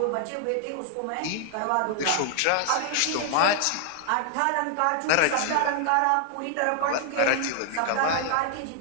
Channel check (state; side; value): different; both; correlation 0.00